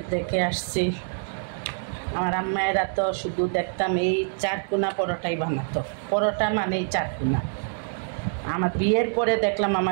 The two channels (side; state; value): left; silent; digital silence